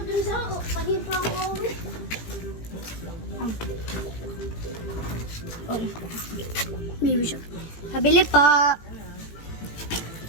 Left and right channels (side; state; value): right; late; 18 ms